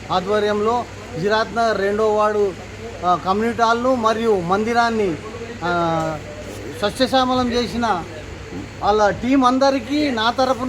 ఆధ్వర్యంలో జిరాత్ నగర్ 2వ వార్డు కమ్యూనిటీ హాల్ను మరియు మందిరాన్ని సస్యశ్యామలం చేసిన వాళ్ళ టీం అందరికీ నా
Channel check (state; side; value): identical; both; correlation 1.00